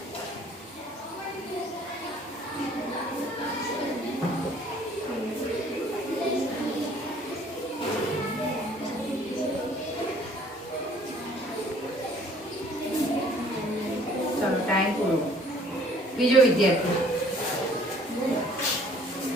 टाइम पूरो बीजो विद्यार्थी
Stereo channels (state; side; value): normal; both; correlation 0.56